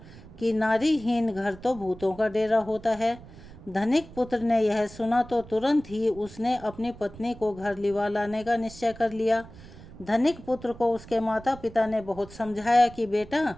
कि नारीहीन घर तो भूतों का डेरा होता है। धनिक पुत्र ने यह सुना तो तुरंत ही उसने अपनी पत्नी को घर लिवा लाने का निश्चय कर लिया। धनिक पुत्र को उसके माता पिता ने बहुत समझाया कि बेटा,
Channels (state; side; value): noise; right; rumble, 18 dB below the sound